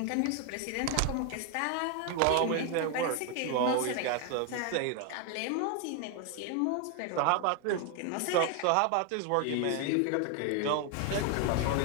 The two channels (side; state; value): both; different; correlation 0.01